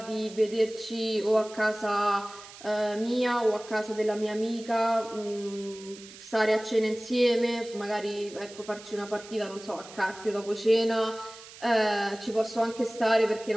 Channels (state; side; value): noise; right; hiss, 18 dB below the sound